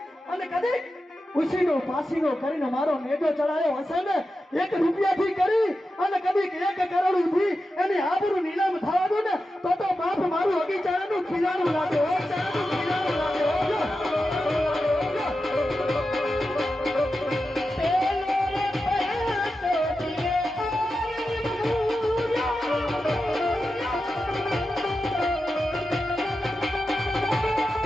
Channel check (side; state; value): both; normal; correlation 0.91